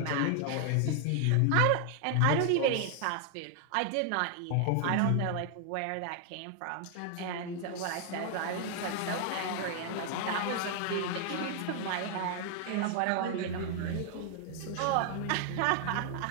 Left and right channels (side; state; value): both; different; correlation 0.00